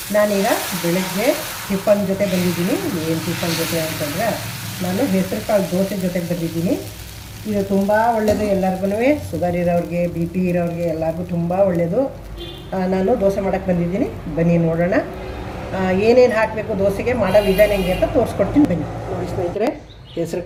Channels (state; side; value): identical; both; correlation 1.00